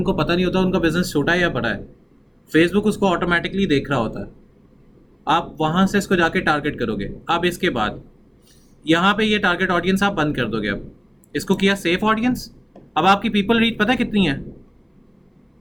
पता नहीं होता उनका बिजनेस छोटा है या बड़ा है। फेसबुक उसको ऑटोमेटिकली देख रहा होता है। आप वहाँ से इसको जाके टारगेट करोगे। अब इसके बाद यहाँ पे ये टारगेट ऑडियंस आप बंद कर दोगे। अब इसको किया सेफ ऑडियंस। अब आपकी पीपल रीच पता है कितनी है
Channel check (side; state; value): both; identical; correlation 1.00